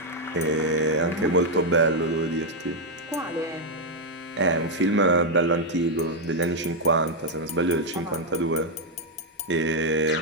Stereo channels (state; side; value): normal; both; correlation 0.00